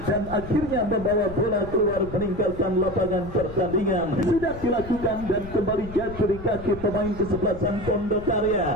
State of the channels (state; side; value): noise; left; rumble, 13 dB below the sound